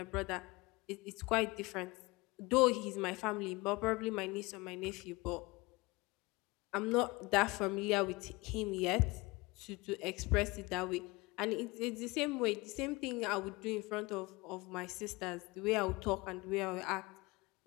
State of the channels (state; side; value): quieter; right; 23.6 dB